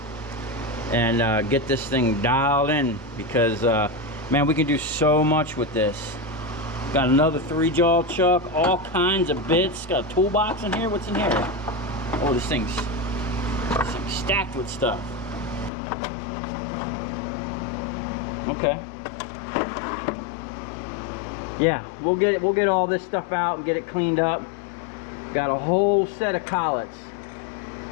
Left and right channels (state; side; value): drops out; right; at 15.7 s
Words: and get this thing dialed in, because man, we can do so much with this. Got another 3-jaw chuck, all kinds of bits. Got a toolbox in here. What's in here? Oh, this thing's stacked with stuff. Okay. Yeah, we'll get all this stuff out and get it cleaned up. Got a whole set of collets.